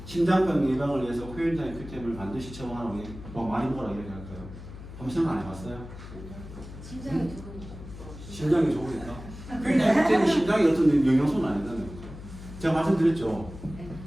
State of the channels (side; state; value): left; noise; hum, 13 dB below the sound